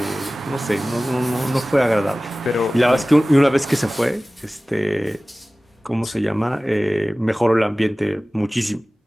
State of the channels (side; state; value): both; normal; correlation 0.97